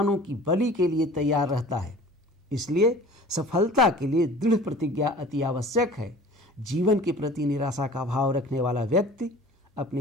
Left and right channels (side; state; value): both; normal; correlation 0.45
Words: की बलि के लिए तैयार रहता है। इसलिए सफलता के लिए दृढ़ प्रतिज्ञा अति आवश्यक है। जीवन के प्रति निराशा का भाव रखने वाला व्यक्ति